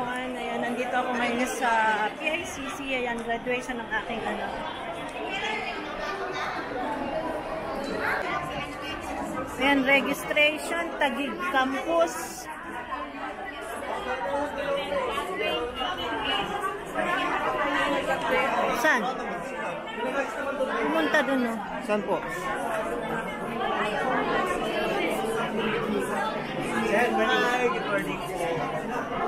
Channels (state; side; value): identical; both; correlation 1.00